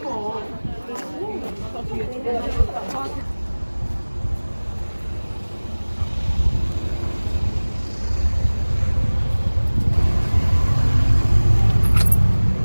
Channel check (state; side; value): inverted; both; correlation -1.00